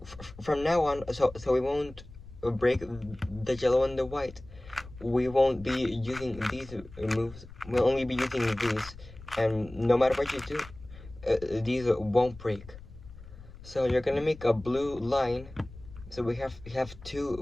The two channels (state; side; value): noise; left; rumble, 17 dB below the sound